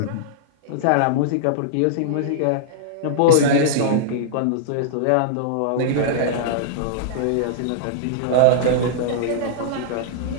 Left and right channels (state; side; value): different; both; correlation -0.02